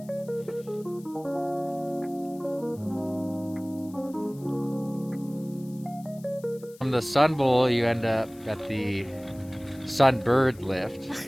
From the Sun Bowl, you end up at the Sunbird lift.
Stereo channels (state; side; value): noise; left; hiss, 24 dB below the sound